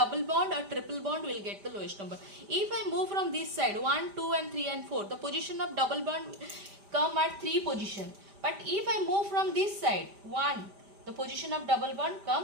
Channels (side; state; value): left; late; 5.0 ms